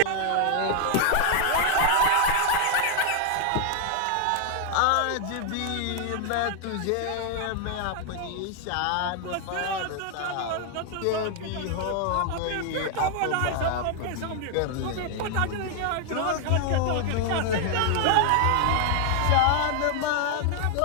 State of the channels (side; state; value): both; different; correlation 0.00